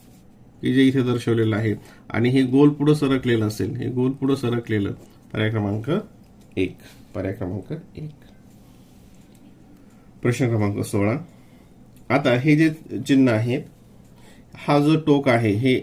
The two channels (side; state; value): both; identical; correlation 1.00